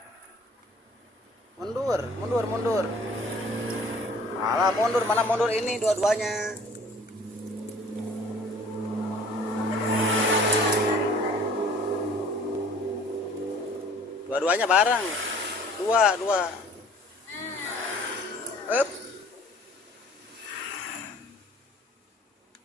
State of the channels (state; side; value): normal; both; correlation 0.52